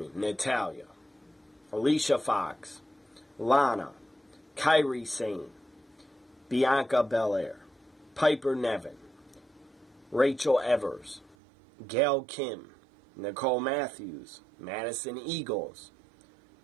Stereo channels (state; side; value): drops out; left; at 11.4 s